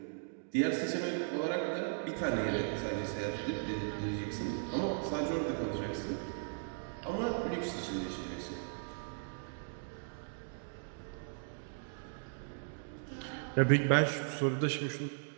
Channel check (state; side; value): silent; left; digital silence